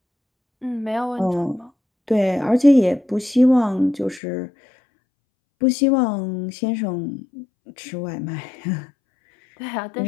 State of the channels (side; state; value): right; drops out; at 4.2 s